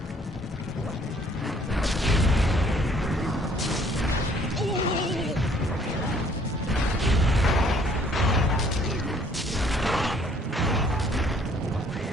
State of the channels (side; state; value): both; normal; correlation 0.61